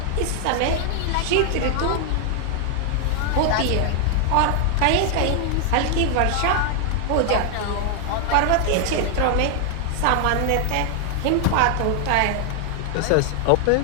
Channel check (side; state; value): both; different; correlation 0.00